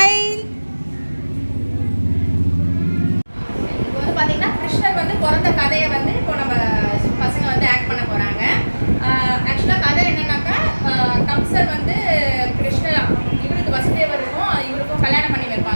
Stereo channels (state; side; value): inverted; both; correlation -1.00